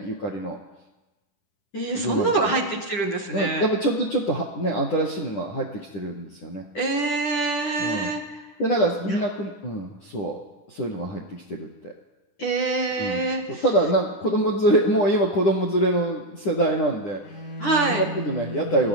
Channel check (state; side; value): late; right; 10 ms